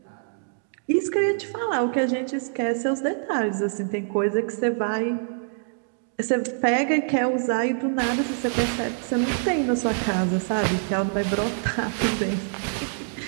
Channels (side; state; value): left; silent; digital silence